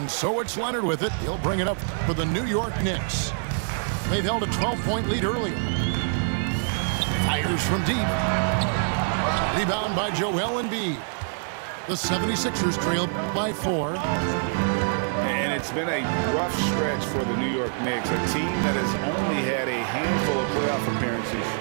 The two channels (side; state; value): left; silent; 61 dB below the other